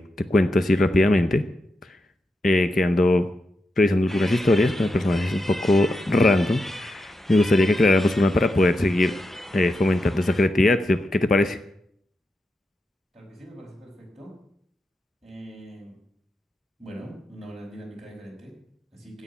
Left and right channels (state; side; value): normal; both; correlation 0.86